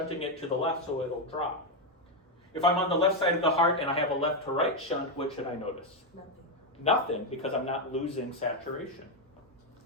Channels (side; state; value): both; normal; correlation 0.04